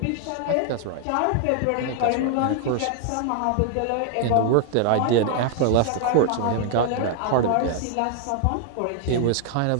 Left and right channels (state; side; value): different; both; correlation 0.00